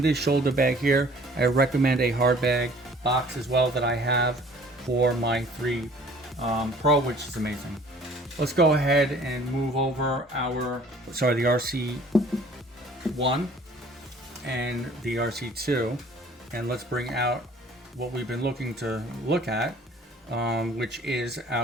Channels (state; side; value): normal; both; correlation 0.53